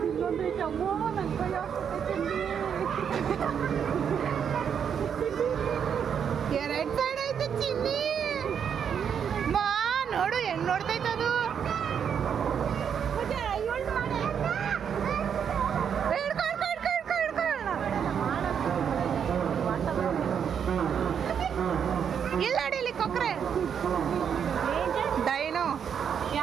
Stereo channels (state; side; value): quieter; left; 7.7 dB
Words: ಇಲ್ಲೊಂದೈತೆ ಅಮ್ಮೋ ನನ್ನ ಕೈ ಹಾಕ್ಬಿಟ್ಟೆ ಎರಡ್ ಸೈಡ್ ಐತೆ ಚಿನ್ನಿ ಮಾ ನೋಡು ಹೆಂಗ್ ನೋಡ್ತೈತೆ ಅದು ಇಲ್ಲ ಅಡಿಲಿ ಕೊಕ್ರೆ ಡೈನೋ